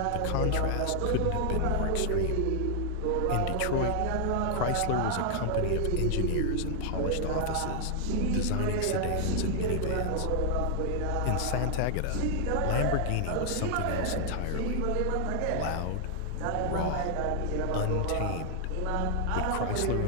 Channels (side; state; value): both; different; correlation 0.00